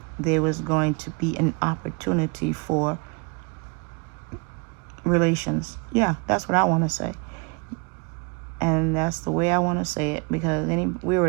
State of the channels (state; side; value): quieter; left; 31.2 dB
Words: there was going to be an opportunity for relations. Yeah, that's what I want to say. And that's the way I want to say it because we're